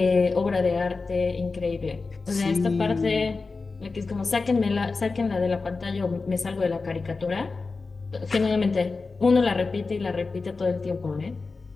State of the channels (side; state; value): right; quieter; 4.1 dB